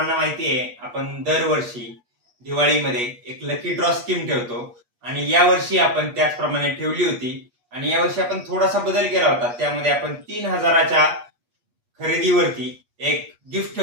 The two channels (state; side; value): late; left; 8.3 ms